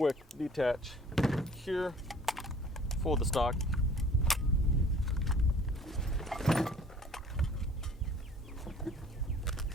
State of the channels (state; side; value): normal; both; correlation 0.51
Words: detach here, fold the stock.